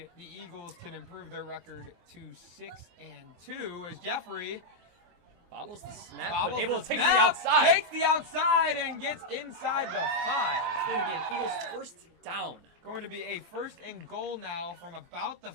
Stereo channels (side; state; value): left; late; 23 ms